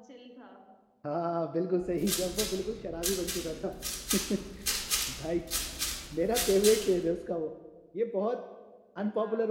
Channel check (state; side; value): identical; both; correlation 1.00